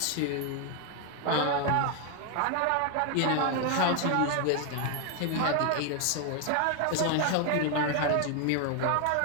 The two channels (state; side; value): different; both; correlation 0.01